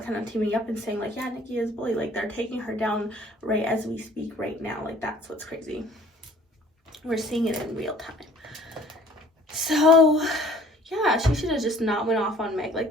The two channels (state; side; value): normal; both; correlation 0.53